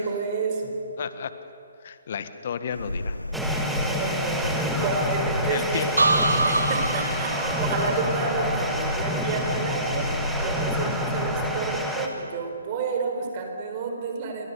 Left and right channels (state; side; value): inverted; both; correlation -0.44